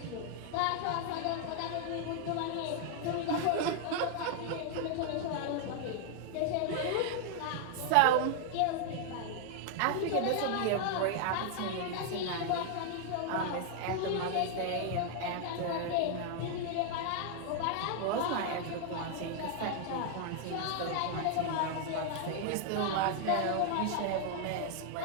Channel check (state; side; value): different; both; correlation 0.00